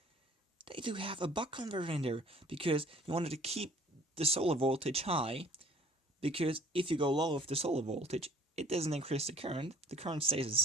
they do have a buck converter in there, because you wanted to keep the solar voltage high, because if you go low with the solar voltage, it doesn't increase the current stays the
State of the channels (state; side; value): normal; both; correlation 0.54